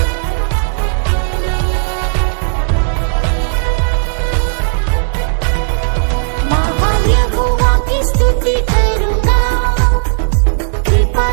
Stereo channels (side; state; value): left; silent; digital silence